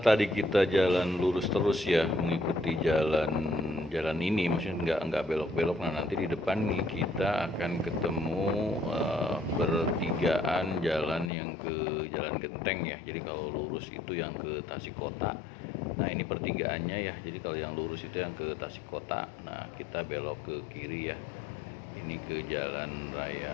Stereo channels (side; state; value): right; drops out; at 11.3 s